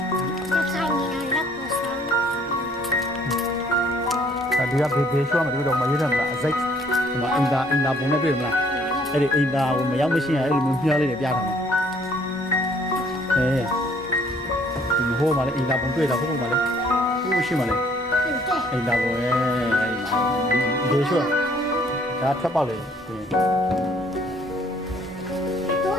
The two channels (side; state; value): both; normal; correlation 0.61